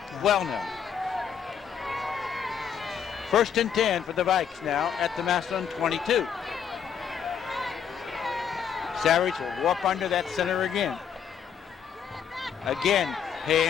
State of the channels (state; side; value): quieter; right; 7.7 dB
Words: Well known. 1st and 10 for the Vikes now at the Massillon 22. Savage will warp under that center again. Again,